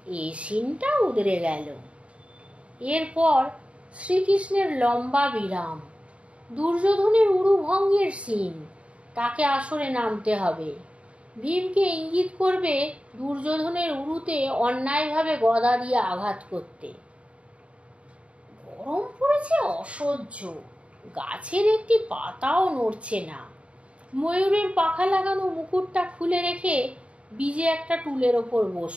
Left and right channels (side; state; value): left; late; 0.061 ms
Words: এই সিনটা উদরে গেল। এরপর শ্রীকৃষ্ণের লম্বা বিরাম। দুর্যোধনের উরুভঙ্গের সিন, তাকে আসরে নামতে হবে। ভীমকে ইঙ্গিত করবে দুর্যোধনের উরুতে অন্যায়ভাবে গদা দিয়ে আঘাত করতে। গরম পড়েছে অসহ্য, গাছের একটি পাতাও নড়ছে না। ময়ূরের পাখা লাগানো মুকুটটা খুলে রেখে বীজে একটা টুলের ওপর